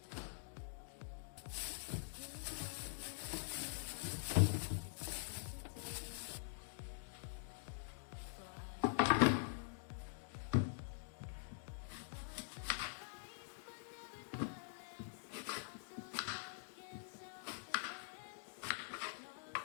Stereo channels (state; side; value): silent; right; digital silence